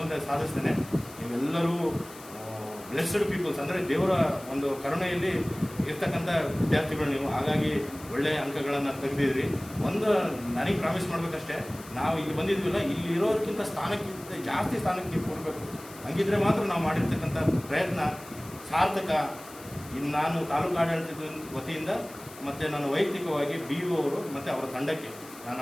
ಸಾಧಿಸ್ತಾನೆ. ನೀವೆಲ್ಲರೂ ಬ್ಲೆಸ್ಡ್ ಪೀಪಲ್ಸ್, ಅಂದರೆ ದೇವರ ಒಂದು ಕರುಣೆಯಲ್ಲಿ ಇರ್ತಕ್ಕಂಥ ವಿದ್ಯಾರ್ಥಿಗಳು ನೀವು. ಹಾಗಾಗಿ ಒಳ್ಳೆಯ ಅಂಕಗಳನ್ನು ತೆಗೆದಿದ್ರಿ. ಒಂದು ನನಗೆ ಪ್ರಾಮಿಸ್ ಮಾಡಬೇಕಷ್ಟೇ, ನಾವು ಇಲ್ಲಿ ಬಂದಿದ್ವಿಲ್ಲ, ಇಲ್ಲಿ ಇರೋದಕ್ಕಿಂತ ಸ್ಥಾನಕ್ಕಿಂತ ಜಾಸ್ತಿ ಸ್ಥಾನಕ್ಕೆ ನೀವು ಕೊಡಬೇಕು. ಹಂಗಿದ್ರೆ ಮಾತ್ರ ನಾವು ಮಾಡಿರ್ತಕ್ಕಂಥ ಪ್ರಯತ್ನ ಸಾರ್ಥಕ. ಇನ್ನು ನಾನು ತಾಲೂಕು ಆಡಳಿತದ ವತಿಯಿಂದ ಮತ್ತು ನಾನು ವೈಯಕ್ತಿಕವಾಗಿ BO ಅವರು ಮತ್ತು ಅವರ ತಂಡಕ್ಕೆ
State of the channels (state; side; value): noise; left; hiss, 18 dB below the sound